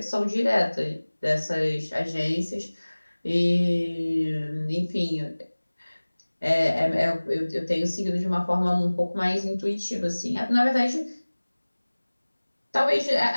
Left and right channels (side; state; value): both; inverted; correlation -1.00